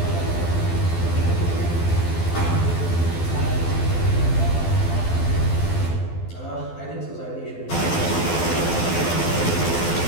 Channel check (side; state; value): right; late; 12 ms